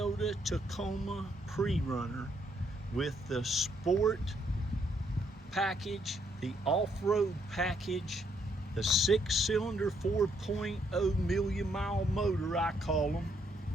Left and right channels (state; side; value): normal; both; correlation 0.72